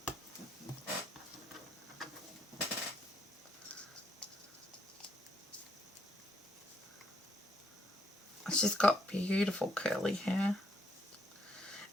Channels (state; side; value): normal; both; correlation 0.72